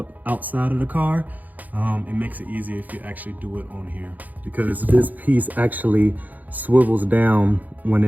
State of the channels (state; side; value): late; left; 0.081 ms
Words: outside of the car. It makes it easier if you actually do it on here, because this piece actually swivels down when